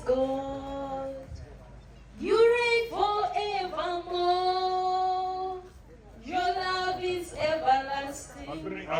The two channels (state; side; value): identical; both; correlation 1.00